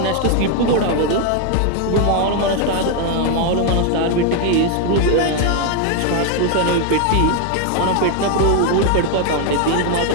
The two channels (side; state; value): both; different; correlation 0.01